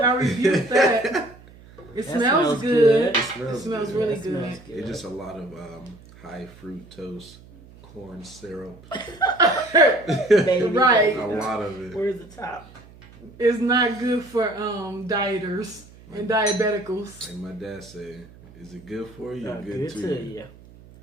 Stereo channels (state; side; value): noise; right; hum, 22 dB below the sound